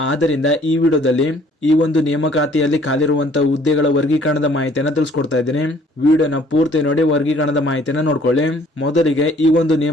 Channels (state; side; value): normal; both; correlation 0.58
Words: ಆದ್ದರಿಂದ ಈ ವಿಡಿಯೋದಲ್ಲಿ ಈ ಒಂದು ನೇಮಕಾತಿಯಲ್ಲಿ ಖಾಲಿರುವಂತಹ ಹುದ್ದೆಗಳ ವರ್ಗೀಕರಣದ ಮಾಹಿತಿಯನ್ನ ತಿಳಿಸ್ಕೊಡ್ತಾ ಇದ್ದೀನಿ. ವಿಡಿಯೋನ ಪೂರ್ತಿ ನೋಡಿ ವರ್ಗೀಕರಣದ ಮಾಹಿತಿಯನ್ನ ನೋಡ್ಕೊಳ್ಳಿ. ಮೊದಲಿಗೆ ಈ ಒಂದು